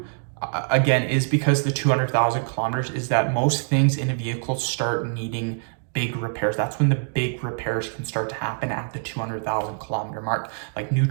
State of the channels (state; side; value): silent; left; digital silence